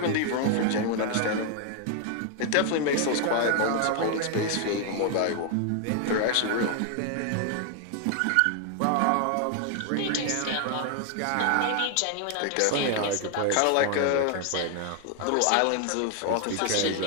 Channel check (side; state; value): both; different; correlation 0.00